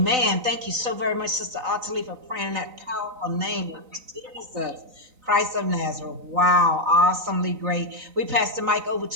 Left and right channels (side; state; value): left; late; 3.9 ms